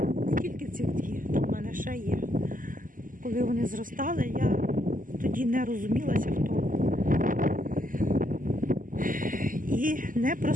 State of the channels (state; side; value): late; left; 0.39 ms